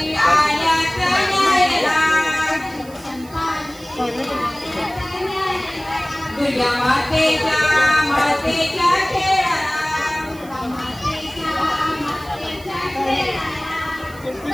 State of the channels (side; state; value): right; noise; hiss, 23 dB below the sound